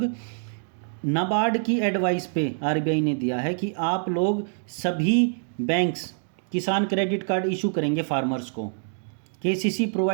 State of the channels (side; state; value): left; silent; digital silence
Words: नाबार्ड की एडवाइस पे आरबीआई ने दिया है कि आप लोग सभी banks Kisan credit card issue करेंगे फार्मर्स को। KCC